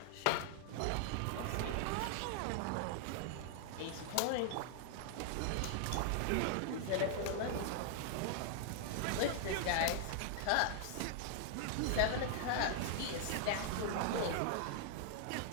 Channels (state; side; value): different; both; correlation 0.00